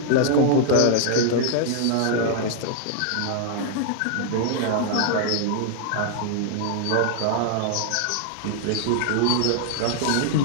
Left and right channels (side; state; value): both; different; correlation 0.00